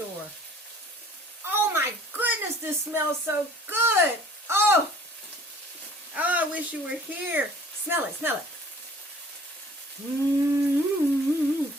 Oh my goodness, this smells so good. Oh, I wish you were here. Smell it, smell it.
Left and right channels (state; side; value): normal; both; correlation 0.52